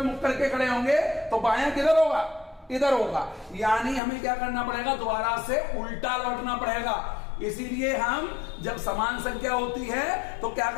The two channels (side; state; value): right; drops out; at 4.0 s